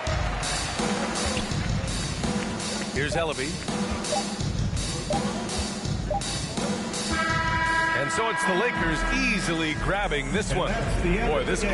Here's Ellaby. And so it's the Lakers easily grabbing this one. Boy, this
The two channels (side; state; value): both; identical; correlation 1.00